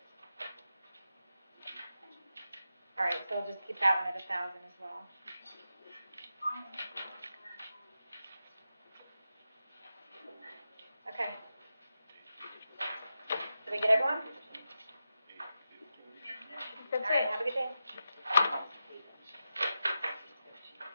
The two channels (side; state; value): both; inverted; correlation -0.90